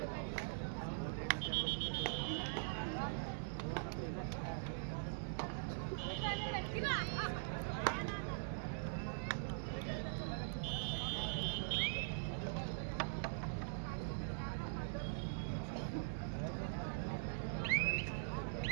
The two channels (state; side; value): silent; left; digital silence